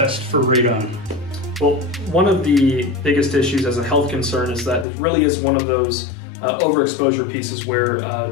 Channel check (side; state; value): right; drops out; at 4.9 s